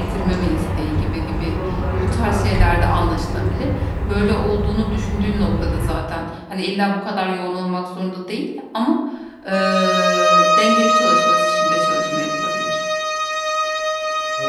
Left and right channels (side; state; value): both; identical; correlation 1.00